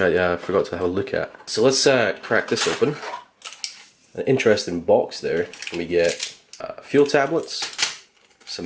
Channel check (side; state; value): both; identical; correlation 1.00